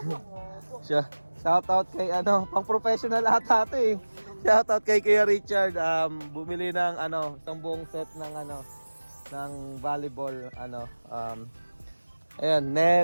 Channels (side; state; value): both; inverted; correlation -1.00